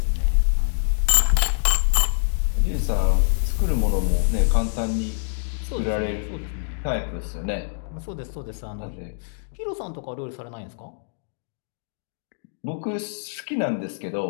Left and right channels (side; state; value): right; silent; digital silence